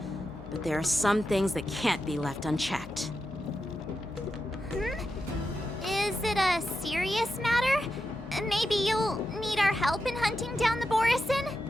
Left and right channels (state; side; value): normal; both; correlation 0.88